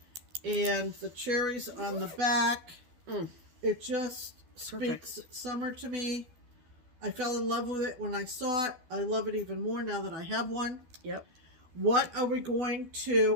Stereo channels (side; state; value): left; late; 12 ms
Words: and the cherries on the back. It just speaks summer to me. I fell in love with it when I saw it. I love it even more now that I have one. Yep. What are we going